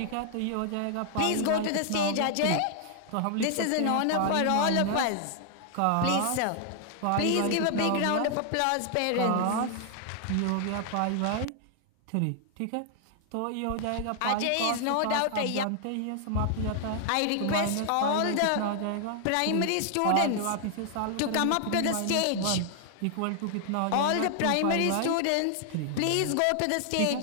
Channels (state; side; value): different; both; correlation 0.00